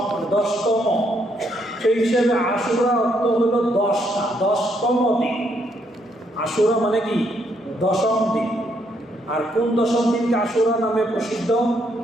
10তম। সেই হিসেবে আশুরা অর্থ হলো 10টা, 10তম দিন। আশুরা মানে কি? 10ম দিন। আর কোন 10ম দিনকে আশুরা নামে প্রসিদ্ধ?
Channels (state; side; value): normal; both; correlation 0.73